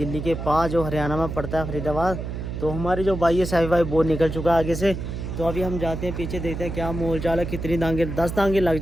के पास जो हरियाणा में पड़ता है फरीदाबाद। तो हमारे जो भाई है साहिब भाई वो निकल चुका है आगे से। तो अभी हम जाते हैं पीछे, देखते हैं क्या मोल चाल है। कितनी दांगे, 10 दांगे लग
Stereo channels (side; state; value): right; noise; hum, 6 dB below the sound